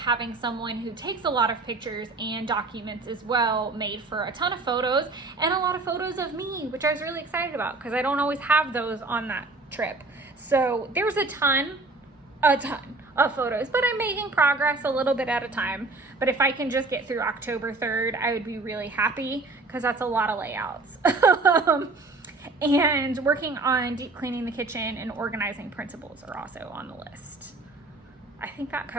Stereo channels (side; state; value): left; quieter; 3.4 dB